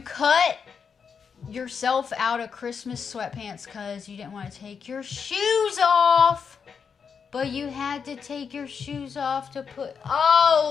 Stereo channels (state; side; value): quieter; right; 6.3 dB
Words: yourself out of Christmas sweatpants because you didn't want to take your shoes off. But you had to take your shoes off to put...